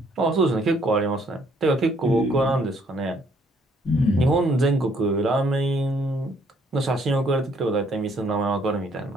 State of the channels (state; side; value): normal; both; correlation 0.66